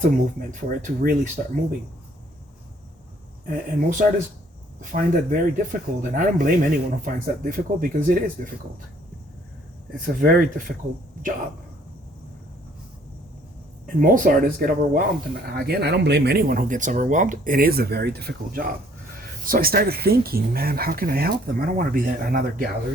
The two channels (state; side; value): normal; both; correlation 0.61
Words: of movement for it to really start moving. And most artists find that very difficult, and I don't blame anyone who finds that difficult, because it is difficult. It's a very difficult job. And most artists get overwhelmed, and again, I don't blame anyone who gets overwhelmed. It is a very difficult job. So I started thinking, man, how can I help them? I don't want to be another